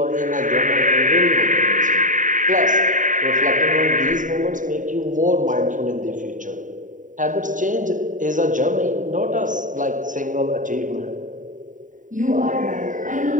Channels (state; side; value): late; left; 0.37 ms